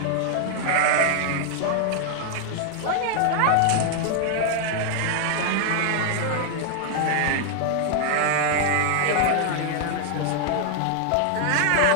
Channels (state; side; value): different; both; correlation 0.00